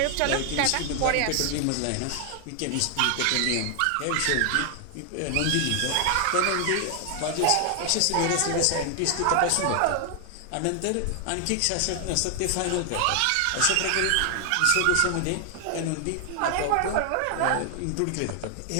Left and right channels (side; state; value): both; different; correlation 0.00